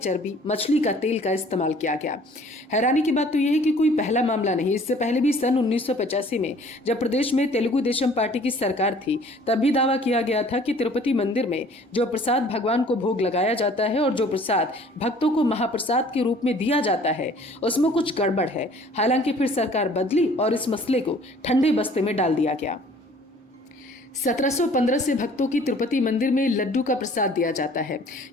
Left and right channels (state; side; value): normal; both; correlation 0.53